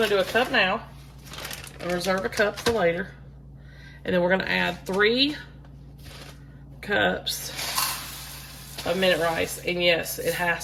to do a cup now and reserve a cup for later. And then we're going to add 3 cups of minute rice, and yes, it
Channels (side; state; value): both; identical; correlation 1.00